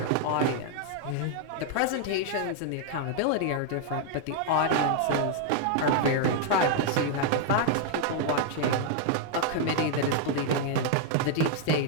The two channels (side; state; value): both; different; correlation 0.00